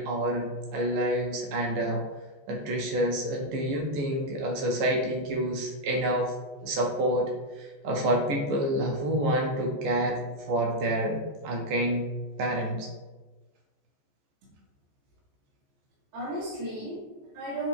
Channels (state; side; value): late; left; 14 ms